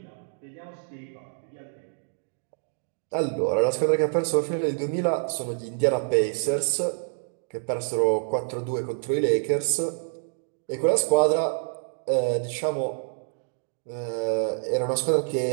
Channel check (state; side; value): silent; left; digital silence